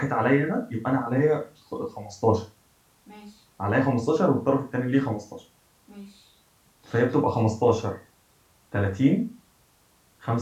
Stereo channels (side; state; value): both; identical; correlation 1.00